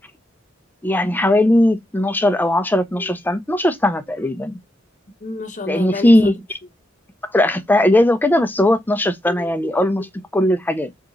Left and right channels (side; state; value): both; normal; correlation 0.84